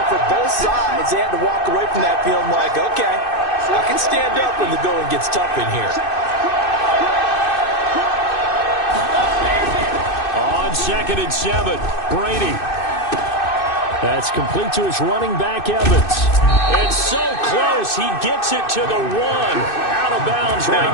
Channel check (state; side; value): late; right; 2.6 ms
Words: for both sides, they had to walk away from that feeling like, okay, I can stand up when the going gets tough in here. On 2nd and 7, Brady. That's complete to his running back, Evans. It's so close. He gets it to the 1. Out of bounds